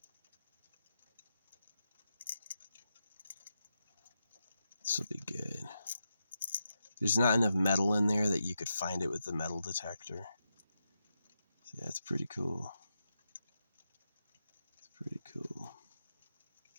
This will be good. There's not enough metal in there that you could find it with the metal detector. So yeah, it's pretty cool. It's pretty cool.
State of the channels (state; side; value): inverted; both; correlation -0.86